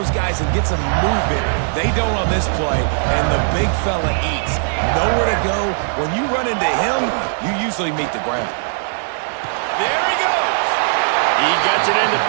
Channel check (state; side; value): silent; left; digital silence